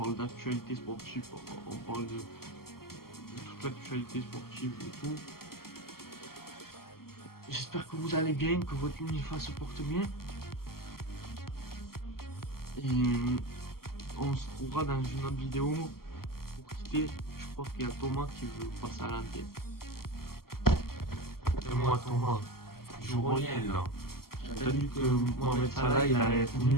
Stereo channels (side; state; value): right; late; 0.93 ms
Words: parle d'actualité sportive, on parle de toute l'actualité sportive et tout. J'espère que vous allez bien, que votre uniforme se porte bien. Et on se retrouvera dans une autre vidéo. Pour quitter, je crois qu'il y a Thomas qui veut passer à l'antenne. Et moi Thomas, je reviens là. T'as dit que Mohamed Salah il allait être